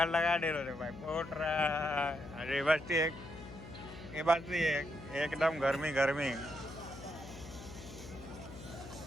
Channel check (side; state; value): left; noise; hum, 14 dB below the sound